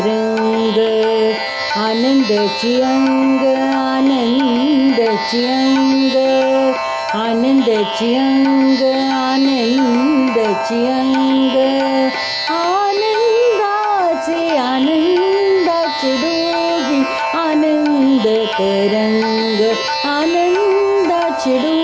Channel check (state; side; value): identical; both; correlation 1.00